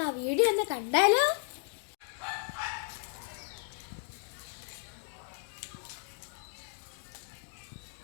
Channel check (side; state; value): right; silent; 55 dB below the other